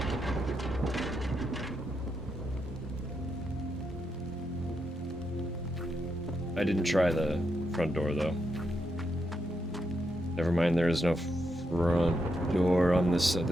I didn't try the front door, though. Never mind, there is no front door on this side.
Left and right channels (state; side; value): normal; both; correlation 0.82